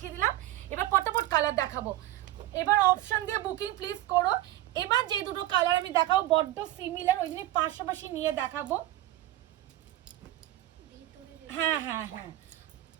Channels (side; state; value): left; quieter; 15.4 dB